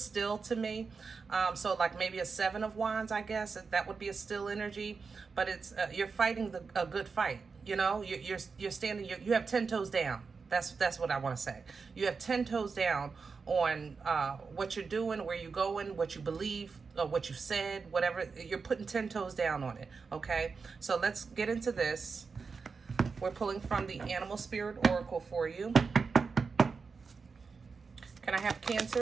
still to me. So like maybe a 7 of Wands, I guess, that would be a still energy, but it's you're fighting a good fight, you know. You're standing, you have 10 toes down. That's what I want to say. You have 10 toes down on what you're doing, where you're going, what you believe, what you said, whatever. You're putting 10 toes down on it, okay? So let's get into this. We're pulling from the Animal Spirit Oracle for you. Can I have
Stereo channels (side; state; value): left; quieter; 5.0 dB